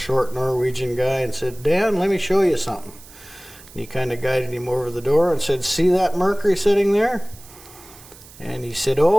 Norwegian guy, and said, Dan, let me show you something. And he kind of guided him over the door and said, see that Mercury sitting there? And he said,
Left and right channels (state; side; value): noise; right; hiss, 21 dB below the sound